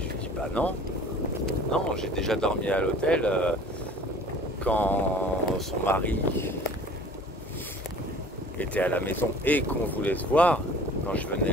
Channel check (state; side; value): normal; both; correlation 0.47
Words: dis bah non, j'ai déjà dormi à l'hôtel quand son mari était à la maison et qu'on voulait se voir, quand je